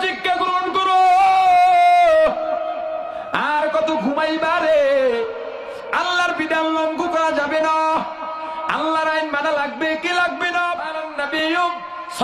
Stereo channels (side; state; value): both; identical; correlation 1.00